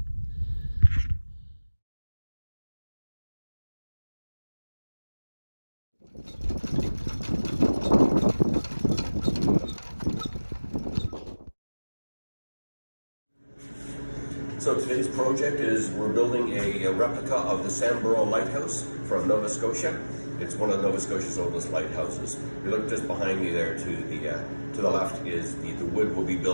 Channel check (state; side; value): inverted; both; correlation -1.00